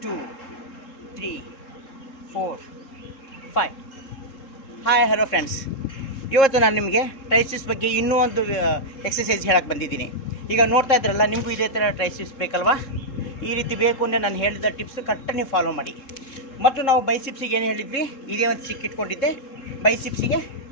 2 3 4 5. Hi hello friends, ಇವತ್ತು ನಾನು ನಿಮಗೆ ಟ್ರೈಸಿಸ್ ಬಗ್ಗೆ ಇನ್ನೂ ಒಂದು ಎಕ್ಸಸೈಸ್ ಹೇಳಕ್ಕೆ ಬಂದಿದ್ದೀನಿ. ಈಗ ನೋಡ್ತಾ ಇದ್ರಲ್ಲ, ನಿಮಗೂ ಇದೇ ಥರ ಟ್ರೈಸಿಸ್ ಬೇಕಲ್ವಾ? ಈ ರೀತಿ ಬೇಕು ಅಂದರೆ ನಾನು ಹೇಳಿದ ಟಿಪ್ಸ್ ಕರೆಕ್ಟಾಗಿ ನೀವು ಫಾಲೋ ಮಾಡಿ. ಮತ್ತು ನಾವು ಬೈಸಿಪ್ಸಿಗೆ ಏನು ಹೇಳಿದ್ವಿ, ಇದೇ ಒಂದು ಸಿಕ್ ಇಟ್ಕೊಂಡಿದ್ದೆ, ಬೈಸಿಪ್ಸಿಗೆ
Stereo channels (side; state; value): right; late; 3.7 ms